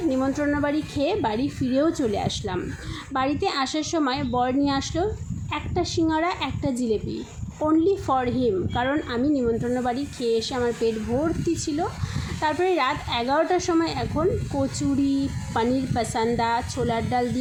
নিমন্ত্রণ বাড়ি খেয়ে বাড়ি ফিরেও চলে আসলাম। বাড়িতে আসার সময় বর নিয়ে আসলো একটা সিঙ্গাড়া, একটা জিলেপি, অনলি ফর হিম, কারণ আমি নিমন্ত্রণ বাড়ি খেয়ে এসে আমার পেট ভর্তি ছিল। তারপরে রাত 11টার সময় এখন কচুরি, পনির পাসান্দা, ছোলার ডাল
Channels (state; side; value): identical; both; correlation 1.00